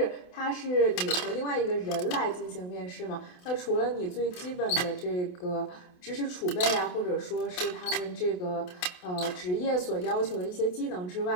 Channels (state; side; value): late; right; 28 ms